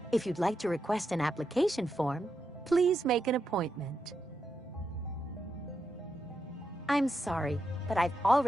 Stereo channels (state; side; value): normal; both; correlation 0.85